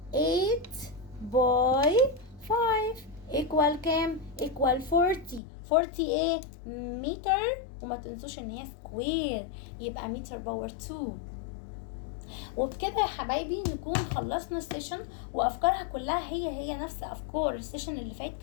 8 باي 5 ايكوال كام؟ ايكوال 40. 40 ايه؟ متر، وما تنسوش ان هي سكوير، يبقى متر باور 2. وبكده يا حبايبي نكون خلصنا السيشن، وافكارها كلها هي نفس افكار السيشن اللي فات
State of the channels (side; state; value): right; drops out; at 5.4 s